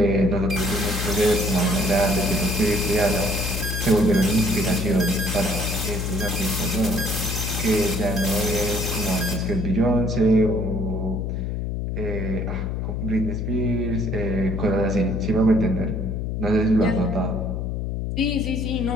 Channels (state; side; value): noise; left; hum, 2 dB below the sound